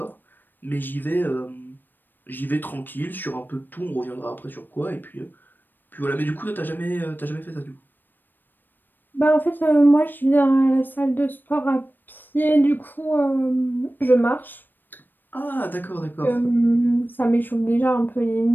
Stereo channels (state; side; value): late; right; 0.092 ms